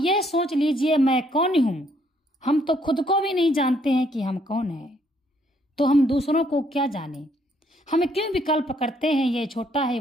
सोच लीजिए, मैं कौन हूं? हम तो खुद को भी नहीं जानते हैं कि हम कौन हैं, तो हम दूसरों को क्या जाने? हम क्यों विकल्प करते हैं, यह छोटा है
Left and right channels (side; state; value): both; normal; correlation 0.69